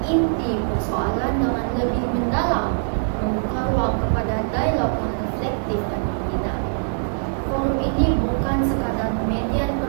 inti persoalan dengan lebih mendalam, membuka ruang kepada dialog yang reflektif dan membina. Forum ini bukan sekadar media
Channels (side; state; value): left; silent; 64 dB below the other